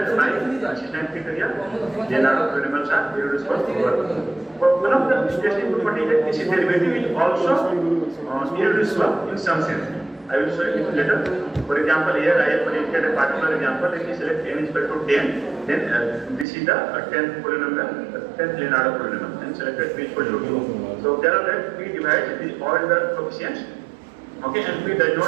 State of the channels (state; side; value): drops out; left; at 16.4 s